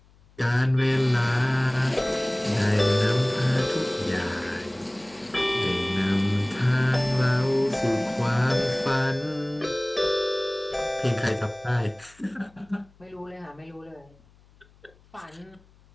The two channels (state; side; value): noise; left; hum, 29 dB below the sound